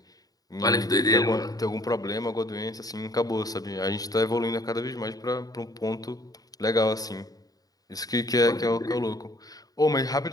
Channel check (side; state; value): right; late; 0.18 ms